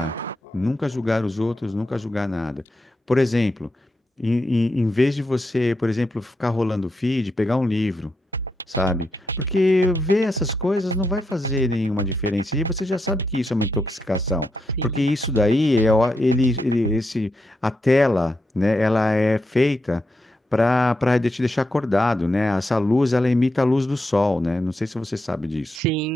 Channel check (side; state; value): both; normal; correlation 0.84